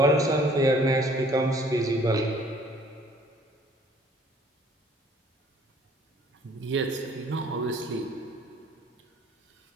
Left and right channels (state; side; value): normal; both; correlation 0.57